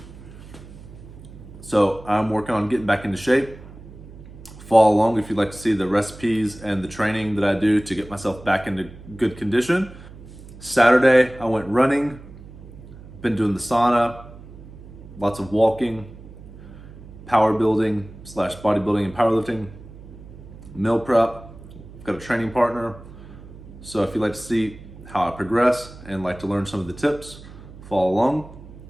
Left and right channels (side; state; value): right; noise; hum, 17 dB below the sound